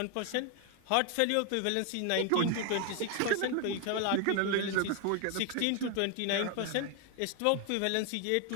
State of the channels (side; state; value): both; different; correlation 0.01